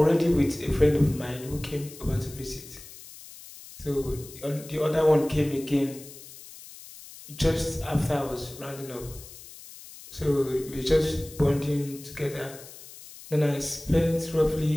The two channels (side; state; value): left; noise; hiss, 17 dB below the sound